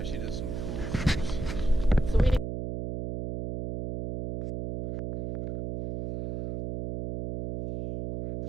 she does some cool trips. So we.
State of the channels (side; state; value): right; noise; hum, 5 dB below the sound